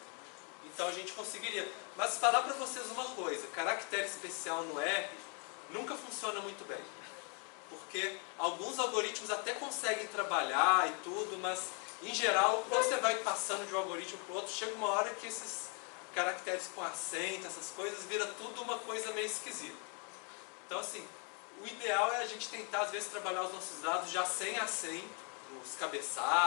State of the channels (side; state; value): right; quieter; 36.9 dB